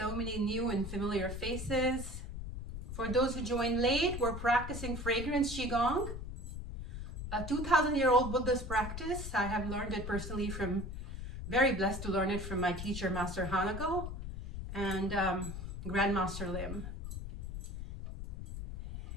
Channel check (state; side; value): noise; left; rumble, 7 dB below the sound